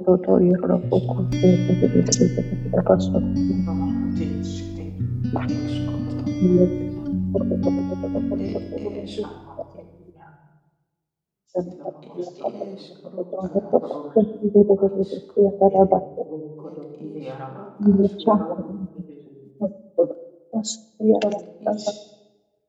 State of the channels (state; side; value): identical; both; correlation 1.00